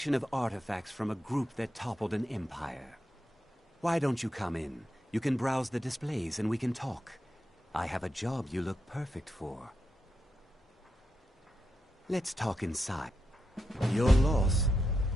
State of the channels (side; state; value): both; normal; correlation 0.86